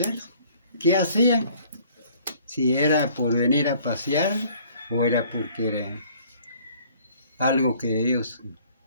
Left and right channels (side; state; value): both; inverted; correlation -0.56